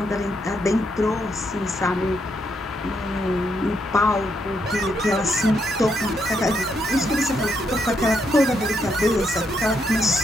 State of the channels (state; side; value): normal; both; correlation 0.78